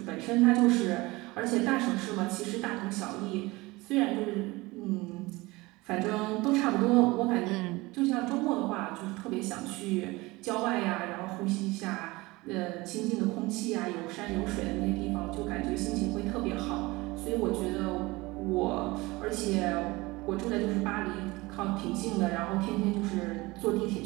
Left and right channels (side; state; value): left; quieter; 22.0 dB